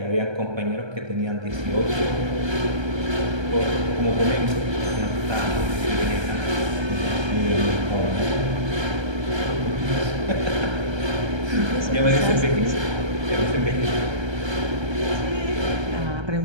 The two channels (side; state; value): left; late; 1.3 ms